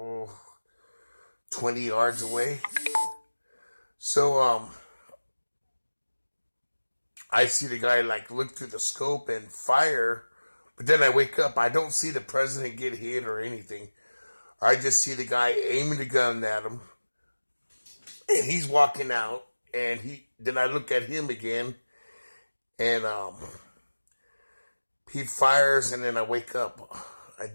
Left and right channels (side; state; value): both; inverted; correlation -1.00